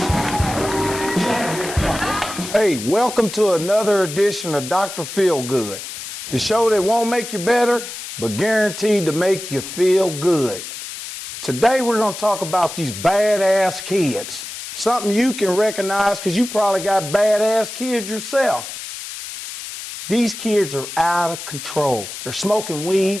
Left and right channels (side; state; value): left; noise; hiss, 9 dB below the sound